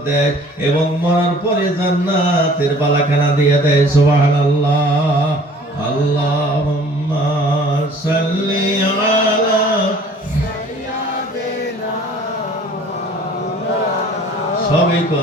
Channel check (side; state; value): both; normal; correlation 0.51